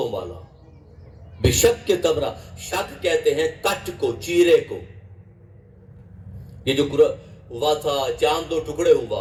والا، بے شک کے تمرہ، شک کہتے ہیں کٹ کو، چیرے کو۔ یہ جو ہوا تھا چاند دو ٹکڑے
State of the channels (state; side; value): identical; both; correlation 1.00